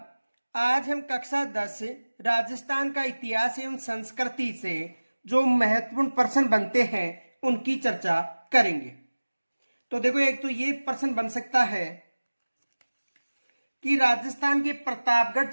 आज हम कक्षा 10 राजस्थान का इतिहास एवं संस्कृति से जो महत्वपूर्ण प्रश्न बनते हैं उनकी चर्चा करेंगे। तो देखो, एक तो ये प्रश्न बन सकता है कि राजस्थान के प्रतापगढ़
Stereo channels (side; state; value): both; inverted; correlation -1.00